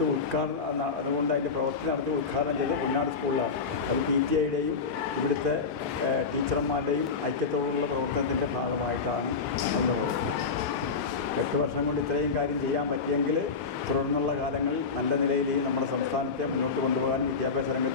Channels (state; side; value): quieter; right; 5.0 dB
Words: ഉദ്ഘാടനം, അതുകൊണ്ട് അതിൻ്റെ പ്രവൃത്തി നടത്തി ഉദ്ഘാടനം ചെയ്തത് പൊന്നാട് സ്കൂളിലാണ്. അത് PTA-യുടെയും ഇവിടുത്തെ ടീച്ചർമാരുടെയും ഐക്യത്തോടുള്ള പ്രവർത്തനത്തിൻ്റെ ഭാഗമായിട്ടാണ് എന്നുള്ളത്. 8 വർഷം കൊണ്ട് ഇത്രയും കാര്യം ചെയ്യാൻ പറ്റിയെങ്കിൽ തുടർന്നുള്ള കാലങ്ങളിൽ നല്ല നിലയിൽ നമ്മുടെ സംസ്ഥാനത്തെ മുന്നോട്ട് കൊണ്ടുപോകാനും വിദ്യാഭ്യാസ